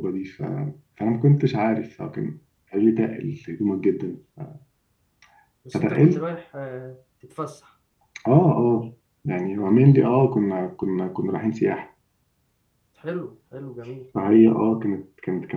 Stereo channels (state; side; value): identical; both; correlation 1.00